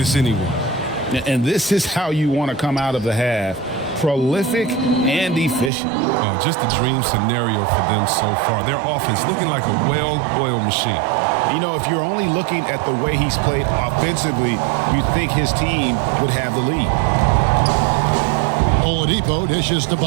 anyone. And this is how you want to come out of the half. Prolific and efficient. Just a dream scenario for them so far. Their offense looking like a well-oiled machine. You know, if you're only looking at the way he's played offensively, you'd think his team would have the lead. Oladipo dishes to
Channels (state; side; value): drops out; left; at 5.7 s